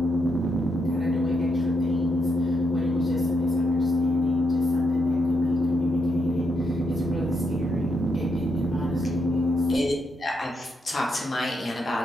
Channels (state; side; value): normal; both; correlation 0.81